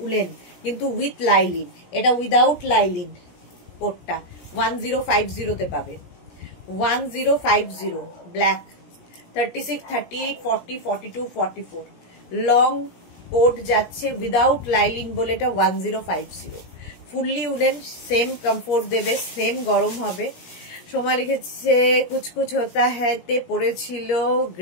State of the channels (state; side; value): late; right; 17 ms